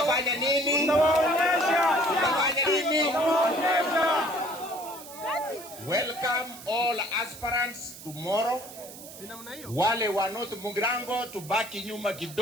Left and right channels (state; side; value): noise; right; hiss, 15 dB below the sound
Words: nini? Tutafanya nini? Welcome all aspirants tomorrow. Wale wa North Mugirango tubaki nyuma